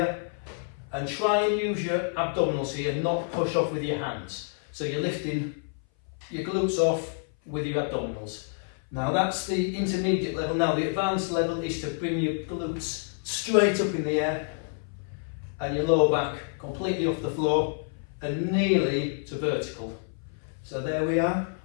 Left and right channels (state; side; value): silent; right; 57 dB below the other